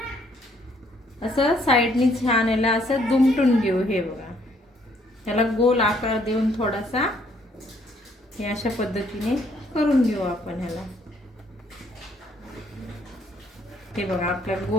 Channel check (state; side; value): normal; both; correlation 0.66